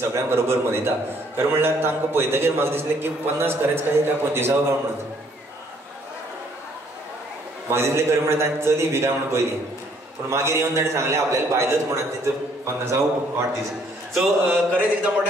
बरोबर मनयता. खरें म्हणल्यार तांकां पळयतकीर म्हाका दिसलें की 50 खरेंच काय 25वा गांव म्हणून. म्हाका दिसलें खरें म्हणल्यार तांची चली बी काय म्हणून पयली, पूण मागीर येवन ताणें सांगलें आपल्याला बायलच म्हणून तिचो 50वा वाढदिवस. सो खरेंच एकदां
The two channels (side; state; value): both; normal; correlation 0.65